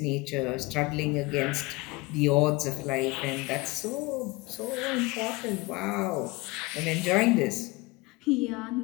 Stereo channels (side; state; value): right; quieter; 23.2 dB